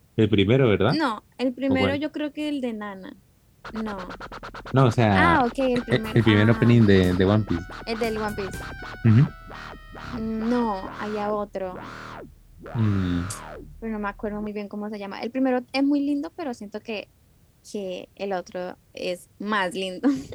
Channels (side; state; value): both; identical; correlation 1.00